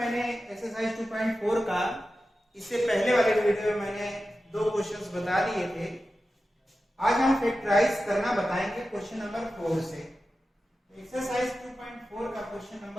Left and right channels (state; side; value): normal; both; correlation 0.93